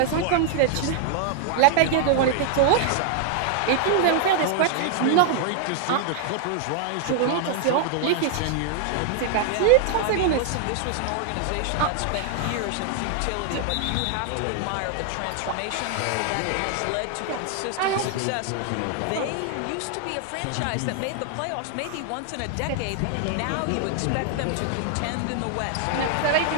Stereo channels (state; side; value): different; both; correlation 0.00